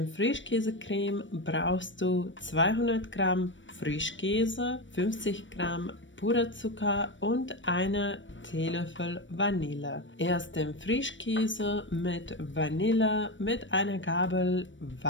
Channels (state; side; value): late; right; 0.55 ms